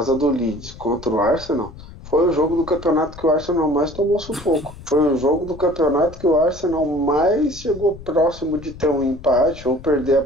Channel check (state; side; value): noise; left; rumble, 16 dB below the sound